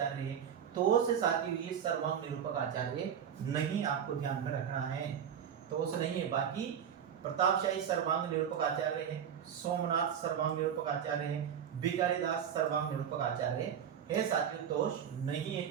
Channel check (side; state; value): left; quieter; 8.5 dB